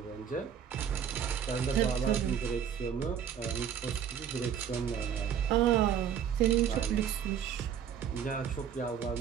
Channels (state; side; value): quieter; left; 8.4 dB